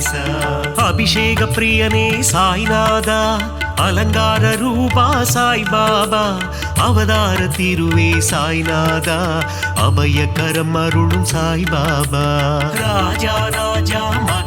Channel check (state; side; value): identical; both; correlation 1.00